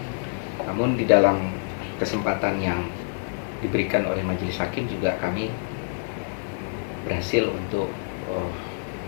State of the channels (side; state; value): right; silent; 55 dB below the other